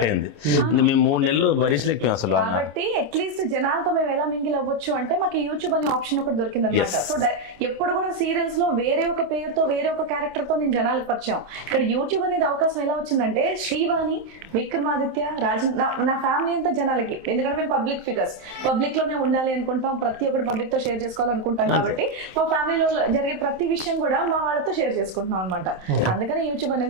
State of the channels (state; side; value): late; left; 27 ms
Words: అయింది. మేము 3 నెలలు భరించలేకపోయాం అసలు కాబట్టి అట్లీస్ట్ జనాలతో మేము ఎలా మింగిల్ అవ్వచ్చు అంటే మాకు యూట్యూబ్ అనే ఆప్షన్ ఒకటి దొరికింది అనమాట. సో ఎప్పుడు కూడా సీరియల్స్ లో వేరే ఒక పేరుతో వేరే ఒక క్యారెక్టర్ తో నేను జనాలకు పరిచయం. ఇక్కడ యూట్యూబ్ అనేది అవకాశం ఎలా వచ్చిందంటే శ్రీవాణి, విక్రమాదిత్య, రాజన్, నా ఫ్యామిలీ అంతా జనాలకి. ఎందుకంటే మేము పబ్లిక్ ఫిగర్స్, పబ్లిక్ లోనే ఉండాలి అనుకుంటాం, ప్రతి ఒక్కటి పబ్లిక్ తో షేర్ చేసుకోవాలనుకుంటాం. కాబట్టి మా ఫ్యామిలీలో జరిగే ప్రతి విషయం కూడా మా వాళ్ళతో షేర్ చేసుకుంటున్నాం అనమాట. అందుకని యూట్యూబ్